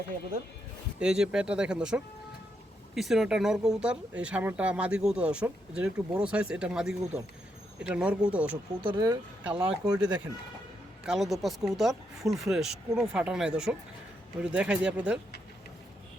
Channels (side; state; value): both; normal; correlation 0.80